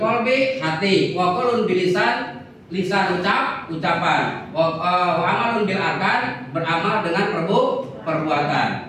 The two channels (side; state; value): both; identical; correlation 1.00